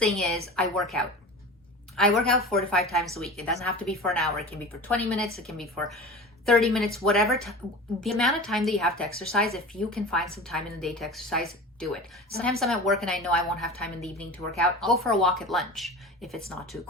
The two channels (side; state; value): both; normal; correlation 0.34